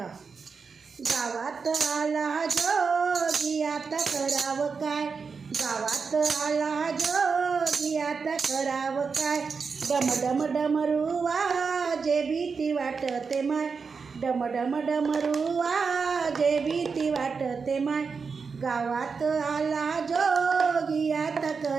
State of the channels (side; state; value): left; quieter; 5.3 dB